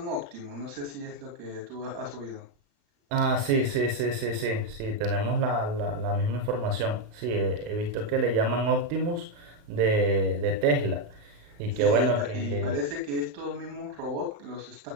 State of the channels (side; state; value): left; late; 35 ms